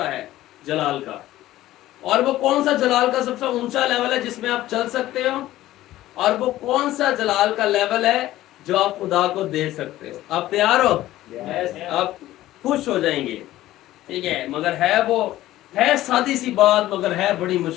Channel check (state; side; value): quieter; right; 15.1 dB